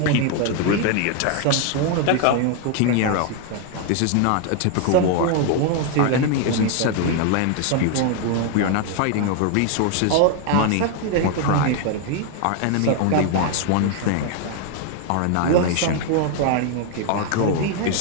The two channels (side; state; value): both; different; correlation 0.00